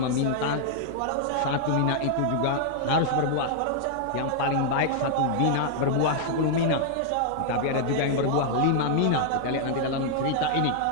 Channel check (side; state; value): both; different; correlation -0.01